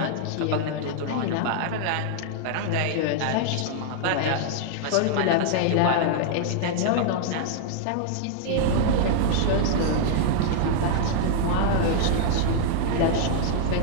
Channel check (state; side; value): different; both; correlation -0.01